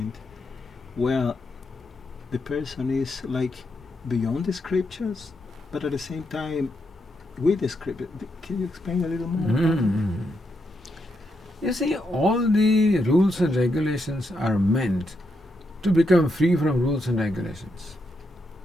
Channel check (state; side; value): normal; both; correlation 0.81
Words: where the person is like beyond the scriptures, but at the same time with the scripture. Can you explain a little more? You see, all the rules and regulations are meant to become free from rules and regulations.